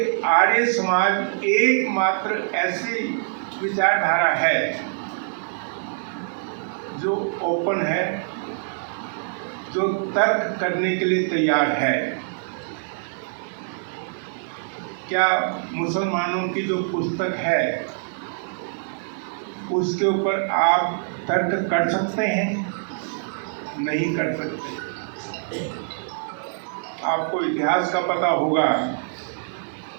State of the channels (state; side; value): silent; left; digital silence